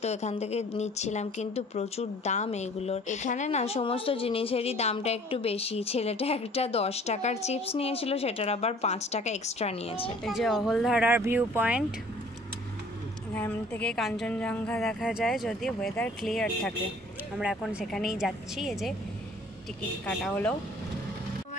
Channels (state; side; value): normal; both; correlation 0.53